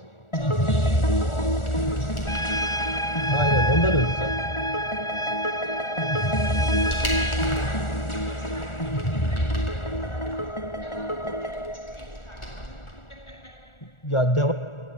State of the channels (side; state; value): right; late; 1.4 ms